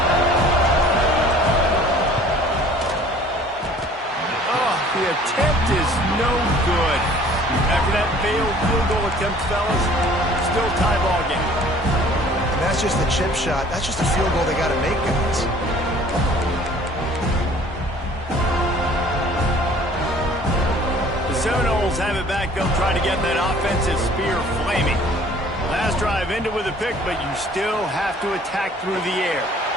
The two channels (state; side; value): normal; both; correlation 0.53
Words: The attempt is no good. After that failed field goal attempt, fellas, still tie ball game. And that's just the chip shot. That's just a field goal they got to make, guys. The Seminoles have it back. They'll try to get that offensive spear flaming. Last drive ended with a pick, but you still have to attack through the air.